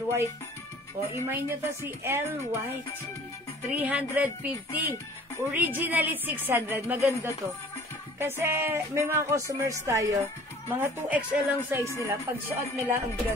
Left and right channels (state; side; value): normal; both; correlation 0.50